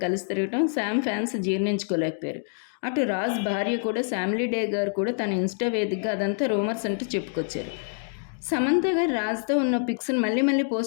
కలిసి తిరగటం శామ్ ఫ్యాన్స్ జీర్ణించుకోలేకపోయారు. అటు రాజ్ భార్య కూడా ఫ్యామిలీ డే గారు కూడా తన ఇన్స్టా వేదికగా అదంతా రూమర్స్ అంటూ చెప్పుకొచ్చారు. సమంత గారు రాజ్తో ఉన్న పిక్స్ని మళ్ళీ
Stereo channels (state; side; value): silent; right; digital silence